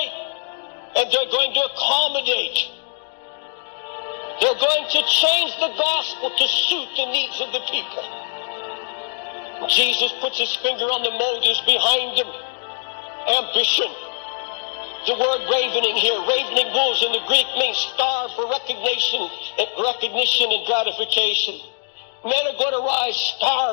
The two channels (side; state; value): right; silent; digital silence